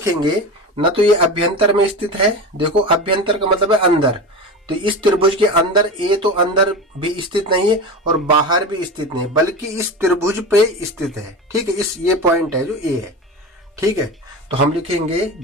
न तो ये अभ्यंतर में स्थित है, देखो अभ्यंतर का मतलब है अंदर, तो इस त्रिभुज के अंदर A तो अंदर भी स्थित नहीं है और बाहर भी स्थित नहीं, बल्कि इस त्रिभुज पे स्थित है। ठीक है, इस ये पॉइंट है जो A है। ठीक है, तो हम लिखेंगे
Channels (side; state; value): both; normal; correlation 0.27